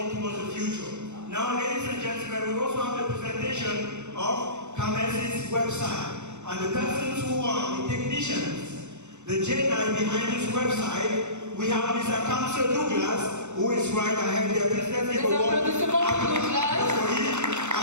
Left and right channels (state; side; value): late; left; 0.83 ms